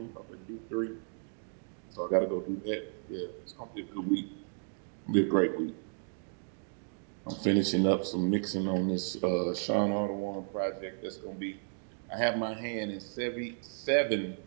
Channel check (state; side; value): silent; left; digital silence